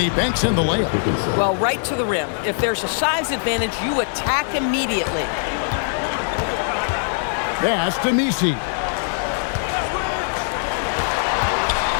he banks in the layup. Well, right to the rim. If there's a size advantage, you attack immediately. Pass to Missi.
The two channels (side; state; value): right; silent; digital silence